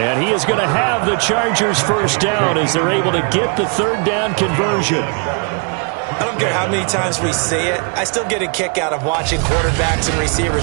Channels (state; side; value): quieter; left; 37.9 dB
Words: he is going to have the Chargers first down as they're able to get the third down conversion. I don't care how many times we see it. I still get a kick out of watching quarterbacks and